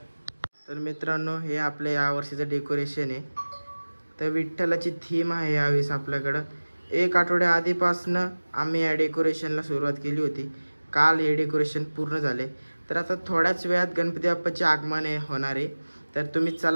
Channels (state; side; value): inverted; both; correlation -1.00